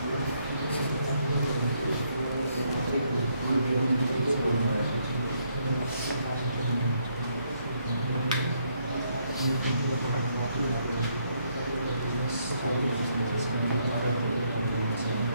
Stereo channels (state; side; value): inverted; both; correlation -0.73